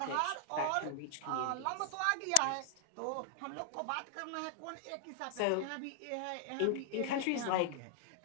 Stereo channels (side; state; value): both; different; correlation 0.00